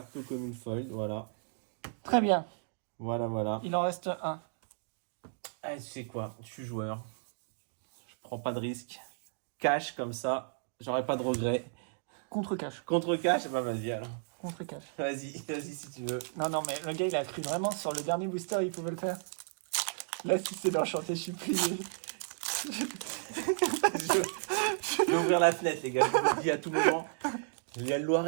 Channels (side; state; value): left; silent; digital silence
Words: commune foil, voilà. Très bien, Voilà. il en reste un. Ah, tu sais quoi, je suis joueur. Je prends pas de risque. Cash comme ça, j'aurai pas de regret. Contre-cash, Contre cash, bah vas-y alors. contre-cash. Vas-y si tu veux. Non, mais le gars, il a cru vraiment sur le dernier booster, il pouvait le faire. Là, si c'est l'enchanté, je suis plié. Je vais ouvrir la fenêtre, les gars, je vous le dis à tout moment. Il y a le